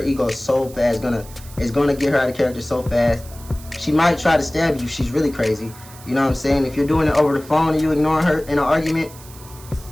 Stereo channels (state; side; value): noise; right; hiss, 20 dB below the sound